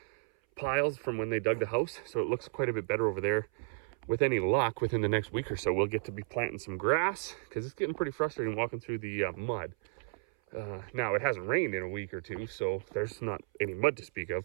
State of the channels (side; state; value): left; silent; 56 dB below the other